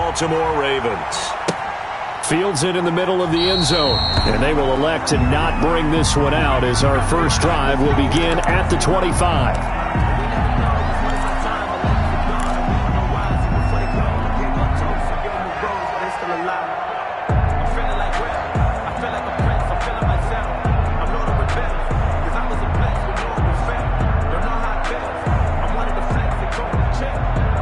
Ravens. Fields it in the middle of the end zone, and they will elect to not bring this one out as our first drive will begin at the 25.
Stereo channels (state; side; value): identical; both; correlation 1.00